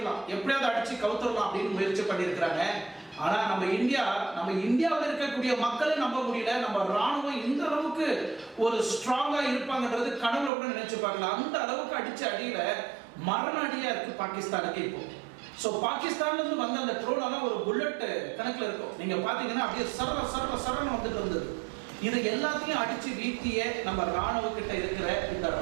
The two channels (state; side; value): drops out; left; at 10.5 s